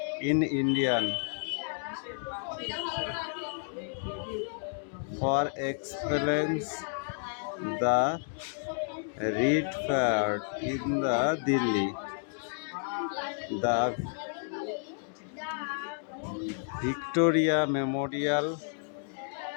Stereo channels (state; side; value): silent; right; 57 dB below the other